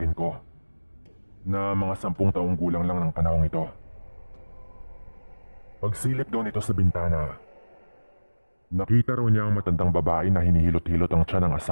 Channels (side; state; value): both; inverted; correlation -1.00